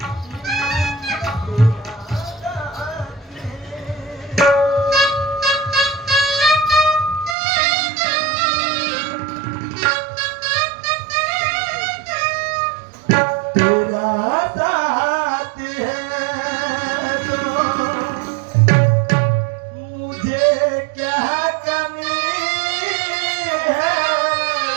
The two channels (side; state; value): left; drops out; at 7.4 s